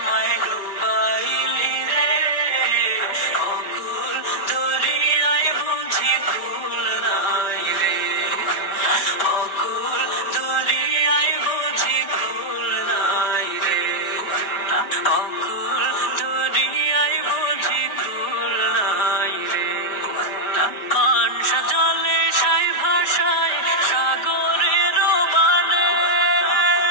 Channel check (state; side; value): late; right; 5.2 ms